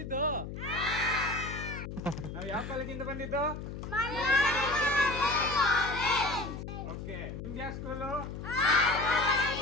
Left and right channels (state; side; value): noise; left; hum, 8 dB below the sound